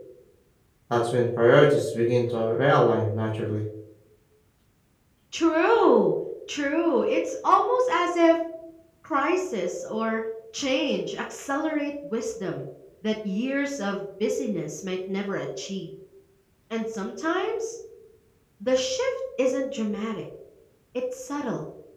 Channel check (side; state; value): both; identical; correlation 1.00